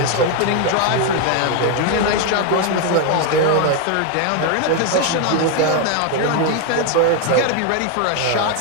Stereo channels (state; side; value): different; both; correlation 0.01